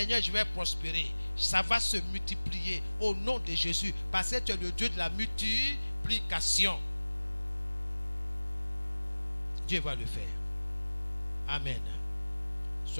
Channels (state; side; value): inverted; both; correlation -1.00